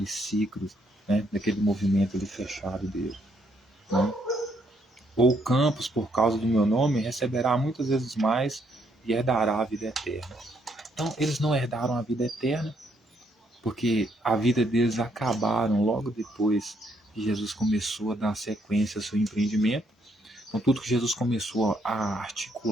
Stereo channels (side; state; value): both; normal; correlation 0.72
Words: ciclo, né? Daquele movimento ali fechado dele, né? Ou campos, por causa do meu nome, receberá muitas vezes mais e herdará a vida eterna. Então, eles não herdaram a vida eterna, porque a vida deles acabaram logo depois que Jesus começou a dar sequência ao seu empreendimento. Então, tudo que Jesus começou a